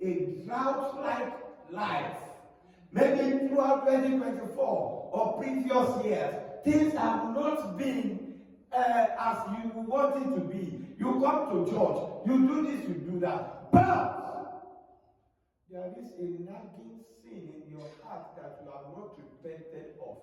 a drought-like life, maybe throughout 2024 or previous years, things have not been as you want it to be. You come to church, you do this, you do that. But there is a nagging sin in your heart that you have not repented of.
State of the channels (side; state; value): both; identical; correlation 1.00